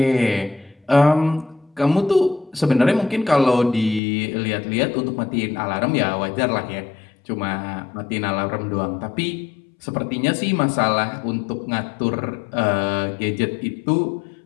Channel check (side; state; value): right; drops out; at 4.0 s